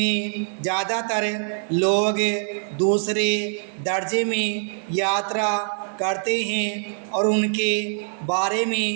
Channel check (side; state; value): left; silent; 63 dB below the other